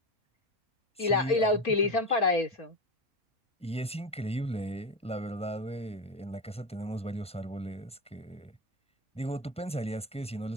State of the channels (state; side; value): normal; both; correlation 0.19